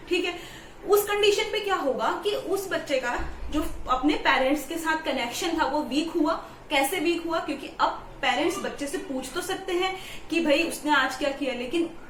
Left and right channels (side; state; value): both; identical; correlation 1.00